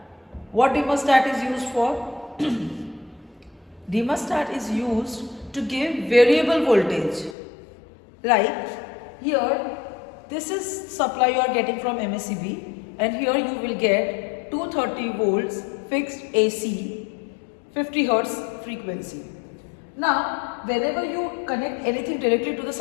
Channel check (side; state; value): right; drops out; at 7.4 s